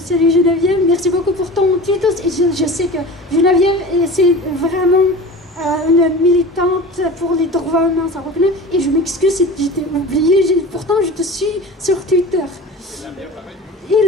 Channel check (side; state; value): both; normal; correlation 0.35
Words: Geneviève, merci beaucoup pour ton titre. Et je sais que Geneviève, c'est vraiment une militante pour les droits humains, ça reconnaît. Et je m'excuse si je t'ai oublié, pourtant je te suis sur Twitter.